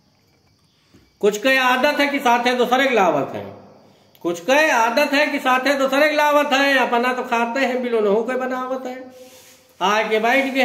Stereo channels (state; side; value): identical; both; correlation 1.00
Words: कुछ के आदत है कि साथे दूसरे की लावत है। कुछ के आदत है कि साथे दूसरे की लावत है। अपना तो खाते हैं बिलो नहू के बनावत है। आए के बैठ गए